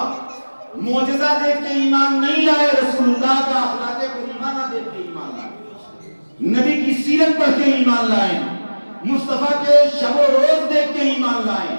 معجزہ دیکھ کے ایمان نہیں لائے، رسول اللہ کا اخلاق کریمہ دیکھ کے ایمان لائے، نبی کی سیرت پڑھ کے ایمان لائے، مصطفیٰ کے شب و روز دیکھ کے ایمان لائے۔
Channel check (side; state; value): both; inverted; correlation -1.00